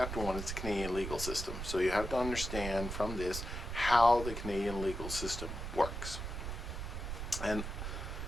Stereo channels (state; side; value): noise; right; rumble, 5 dB below the sound